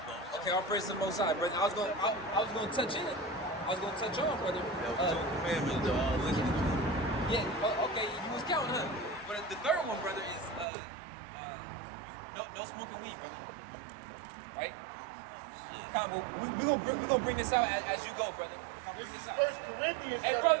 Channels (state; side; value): drops out; left; at 10.7 s